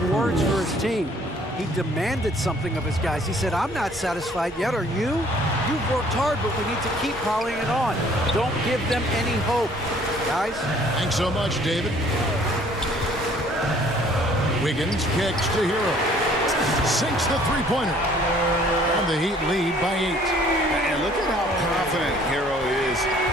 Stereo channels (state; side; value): normal; both; correlation 0.58